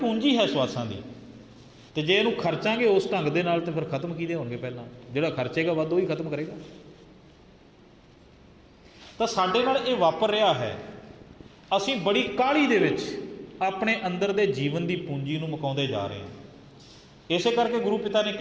ਹੈ ਸਵਾਸਾਂ ਦੀ, ਅਤੇ ਜੇ ਇਹਨੂੰ ਖਰਚਾਂਗੇ ਉਸ ਢੰਗ ਦੇ ਨਾਲ ਤਾਂ ਫਿਰ ਖਤਮ ਕਿਹਦੇ ਹੋਣਗੇ? ਪਹਿਲਾਂ ਜਿਹੜਾ ਖਰਚੇਗਾ ਵੱਧ ਉਹ ਹੀ ਖਤਮ ਕਰੇਗਾ। ਤਾਂ ਸਾਡੇ ਨਾਲ ਇਹ ਵਾਪਰ ਰਿਹਾ ਹੈ। ਅਸੀਂ ਬੜੀ ਕਾਹਲੀ ਦੇ ਵਿੱਚ ਆਪਣੇ ਅੰਦਰ ਦੇ ਜੀਵਨ ਦੀ ਪੂੰਜੀ ਨੂੰ ਮੁਕਾਉਂਦੇ ਜਾ ਰਹੇ ਹਾਂ। ਇਸੇ ਕਰਕੇ ਗੁਰੂ ਪਿਤਾ ਨੇ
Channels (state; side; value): identical; both; correlation 1.00